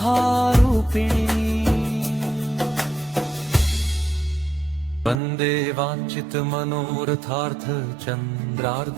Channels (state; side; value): drops out; left; at 5.2 s